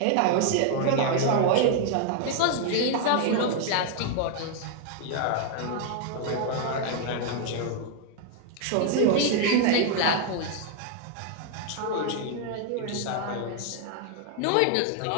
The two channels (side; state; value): both; different; correlation 0.00